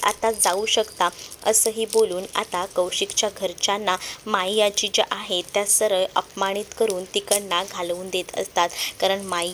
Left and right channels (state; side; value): identical; both; correlation 1.00